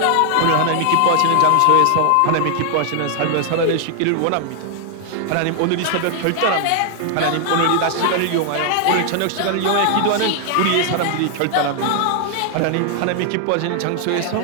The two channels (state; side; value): different; both; correlation 0.00